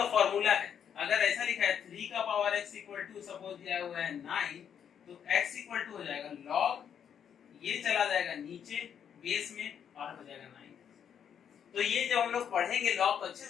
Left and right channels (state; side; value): quieter; right; 8.3 dB